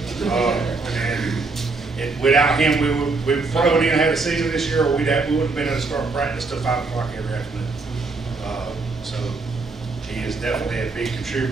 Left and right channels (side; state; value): left; quieter; 3.8 dB